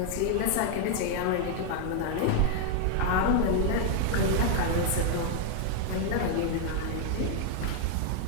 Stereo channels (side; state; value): both; different; correlation 0.00